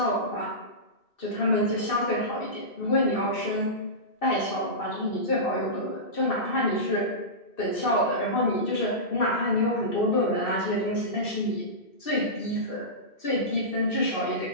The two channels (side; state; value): right; late; 2.6 ms